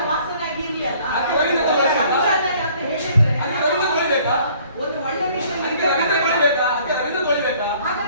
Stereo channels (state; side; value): inverted; both; correlation -0.57